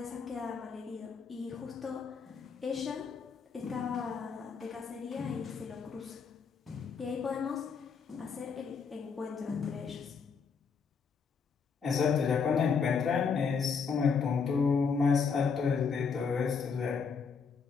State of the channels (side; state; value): right; quieter; 5.7 dB